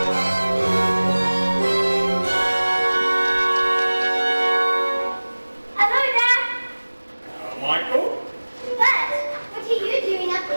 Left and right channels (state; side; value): inverted; both; correlation -1.00